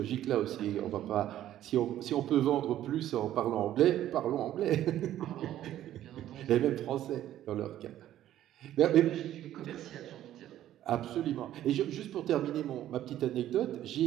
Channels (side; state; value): left; quieter; 12.5 dB